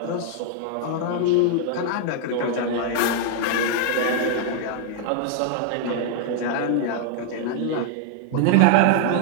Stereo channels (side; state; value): both; different; correlation 0.00